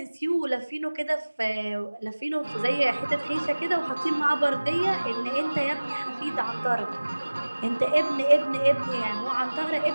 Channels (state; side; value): inverted; both; correlation -1.00